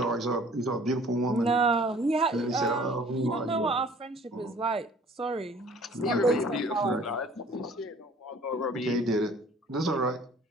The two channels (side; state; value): both; normal; correlation 0.52